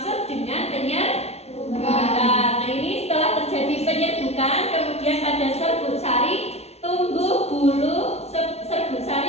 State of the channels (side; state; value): right; late; 0.31 ms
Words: dengan penyerbukan. Nah, ini setelah terjadi penyerbukan, kemudian pada serbuk sari tumbuh bulu serbuk